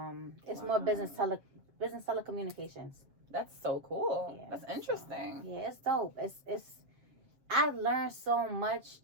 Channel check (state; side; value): late; left; 7.4 ms